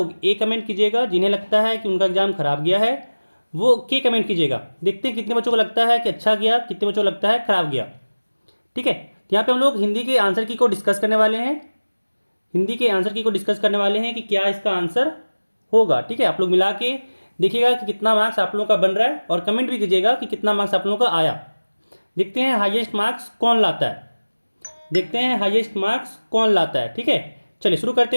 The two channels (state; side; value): inverted; both; correlation -1.00